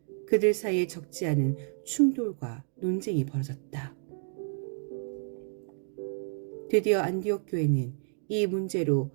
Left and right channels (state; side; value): silent; left; digital silence